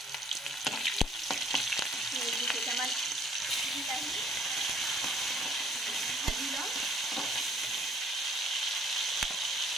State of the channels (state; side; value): normal; both; correlation 0.60